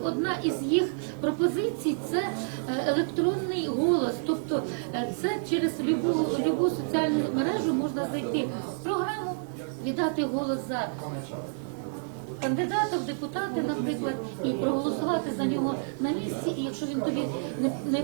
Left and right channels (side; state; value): left; silent; digital silence